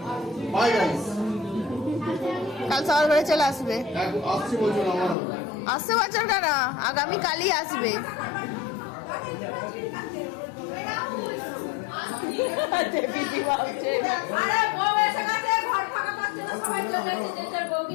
বাই গাইস কাল সকাল করে চলে আসবে। আসছি বলছো না আমার আসছে বছর কেন, আগামী কালই আসবে। আরে বউ এসে গেছে, ঘর ফাঁকা পাচ্ছে না, সবাই চলে যাচ্ছে যে যার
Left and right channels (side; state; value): right; drops out; at 5.2 s